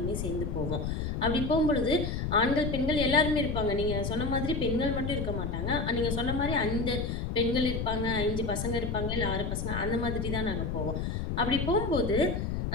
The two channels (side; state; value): left; noise; rumble, 2 dB below the sound